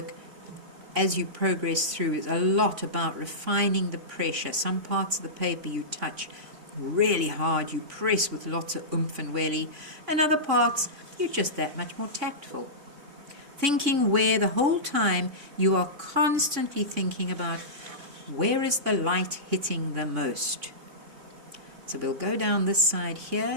as you progress through is a lot about refining the pressure. Some parts of the paper you touch really hard, you press with lots of oomph and welly, and other parts you're just that much more tactful. Thinking where the whole time you are constantly thinking about where is the light hitting the most. So we'll go down this side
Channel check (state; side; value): late; left; 3.5 ms